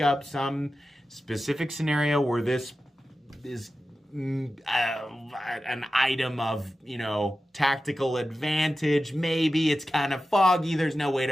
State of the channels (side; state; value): both; normal; correlation 0.93